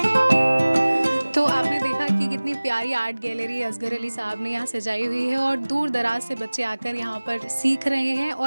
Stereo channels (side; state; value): both; inverted; correlation -1.00